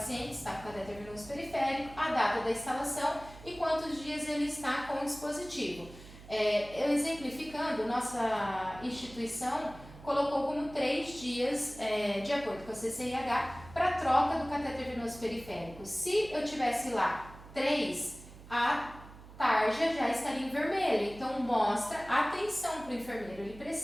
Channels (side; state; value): right; noise; hum, 18 dB below the sound